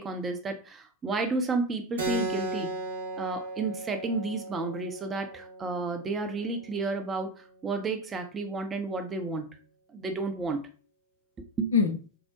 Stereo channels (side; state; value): both; normal; correlation 0.22